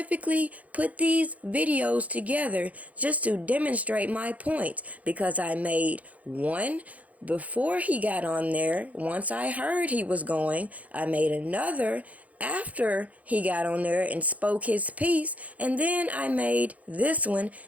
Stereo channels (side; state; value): left; late; 0.070 ms